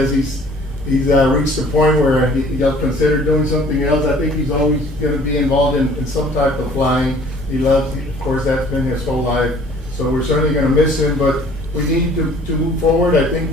he's reached the point where he'll consider doing something else. I think he's always gonna be involved in some type of flying. He loves, of course, that's been his whole life, so we're certainly gonna miss him, but we need to move forward. I think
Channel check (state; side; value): normal; both; correlation 0.53